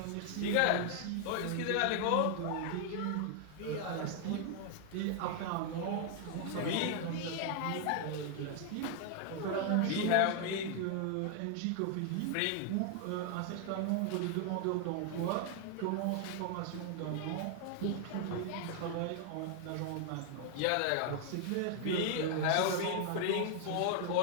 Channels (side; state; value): both; different; correlation 0.00